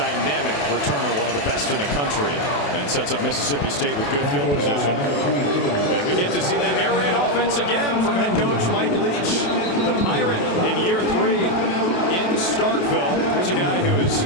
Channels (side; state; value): right; late; 28 ms